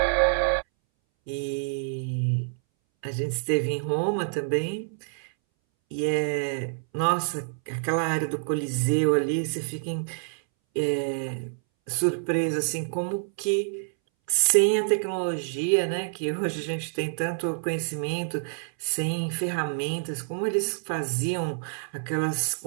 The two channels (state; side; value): silent; left; 60 dB below the other